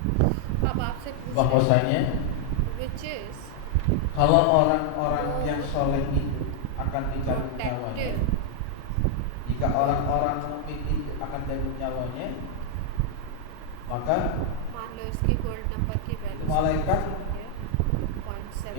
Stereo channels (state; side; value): different; both; correlation 0.00